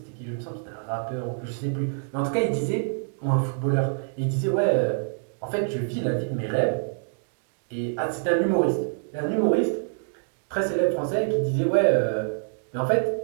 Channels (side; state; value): left; silent; digital silence